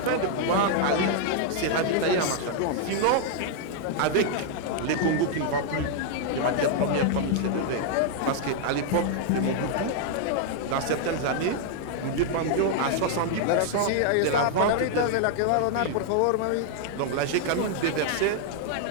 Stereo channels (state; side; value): different; both; correlation 0.00